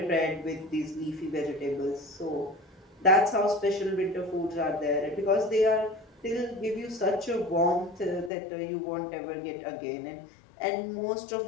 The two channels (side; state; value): right; drops out; at 8.3 s